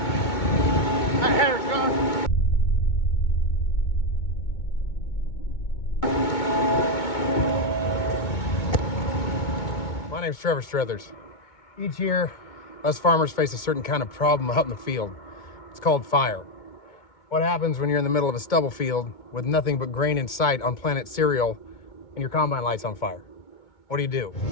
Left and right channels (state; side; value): late; right; 2.2 ms